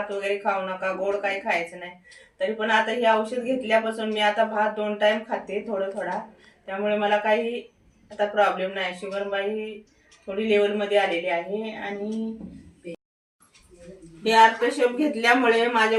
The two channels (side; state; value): both; identical; correlation 1.00